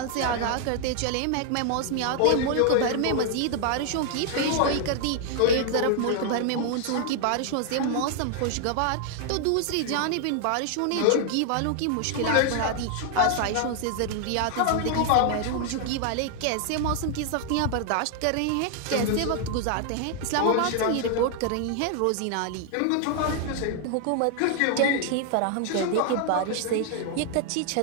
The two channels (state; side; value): different; both; correlation 0.00